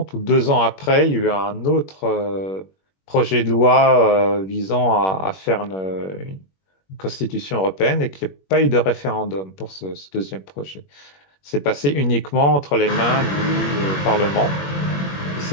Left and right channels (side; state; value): right; late; 21 ms